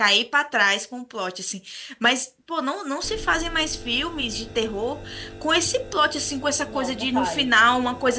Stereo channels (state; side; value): identical; both; correlation 1.00